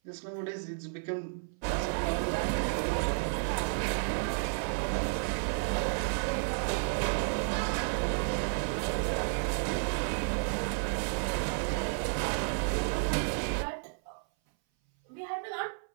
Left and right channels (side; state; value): left; silent; 56 dB below the other